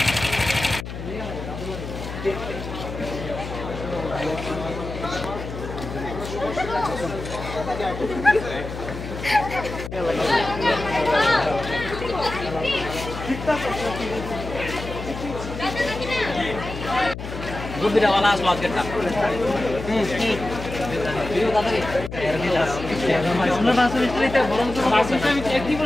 गुड्डीवाला स्वाद करता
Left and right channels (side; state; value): left; noise; hum, 8 dB below the sound